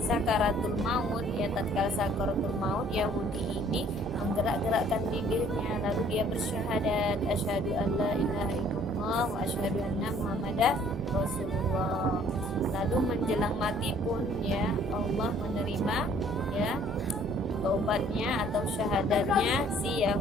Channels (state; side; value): normal; both; correlation 0.58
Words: maut, ya, tatkala sakaratul maut, Yahudi ini menggerak-gerakkan bibirnya, lalu dia bersyahadat, asyhadu an la ilaha illallah wa asyhadu anna muhammadar rasulullah. Lalu menjelang mati pun, ya, Allah menerima, ya, taubatnya atau syahadatnya si